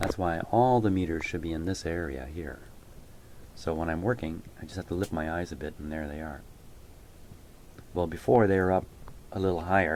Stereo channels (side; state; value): both; identical; correlation 1.00